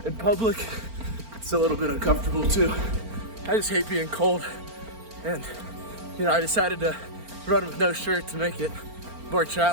in public. It's a little bit uncomfortable too. I just hate being cold. And I decided to run with no shirt to make it more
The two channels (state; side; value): late; left; 4.4 ms